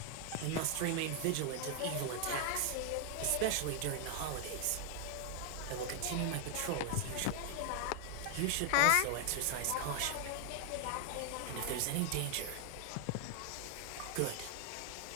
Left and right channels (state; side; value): different; both; correlation 0.00